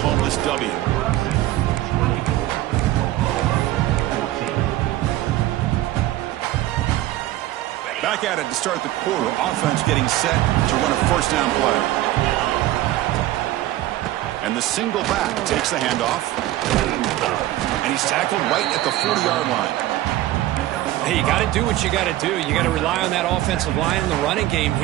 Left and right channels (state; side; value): quieter; left; 15.1 dB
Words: this W? Back at it to start the quarter. Offense getting set to run a 1st down play. And the single back takes the handoff. And he's tackled right at the 40-yard line. Hey, you got to do what you got to do. You got to rely on that offensive line in the running game